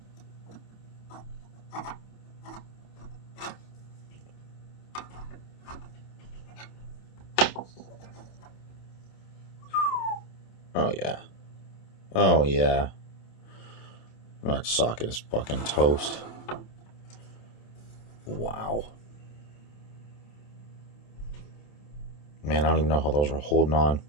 Oh yeah. Oh yeah. That socket is fucking toast. Wow. Man, I don't even know how those are holding on,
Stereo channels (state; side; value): late; right; 27 ms